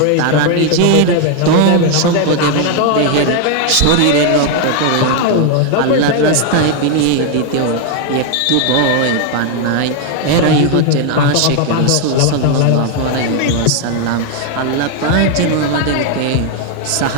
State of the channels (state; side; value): different; both; correlation 0.00